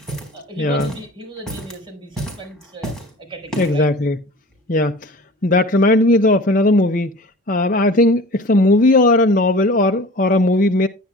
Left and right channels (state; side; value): normal; both; correlation 0.41